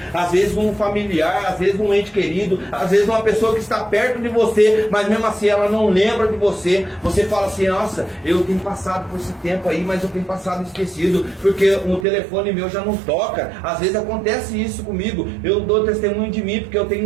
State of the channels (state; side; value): drops out; left; at 12.1 s